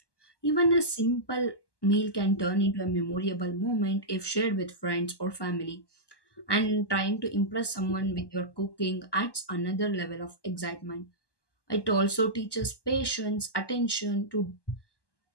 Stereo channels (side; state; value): right; late; 1.1 ms